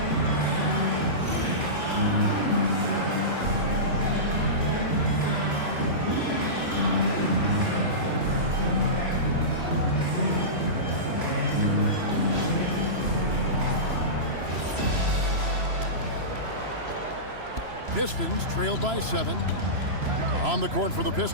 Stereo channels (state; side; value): late; left; 3.0 ms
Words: Pistons trail by 7. On the court for the